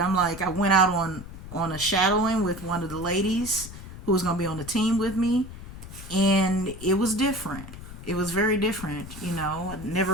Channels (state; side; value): noise; left; rumble, 13 dB below the sound